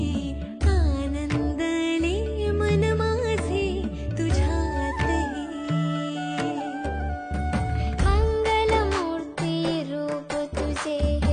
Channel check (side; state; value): both; identical; correlation 1.00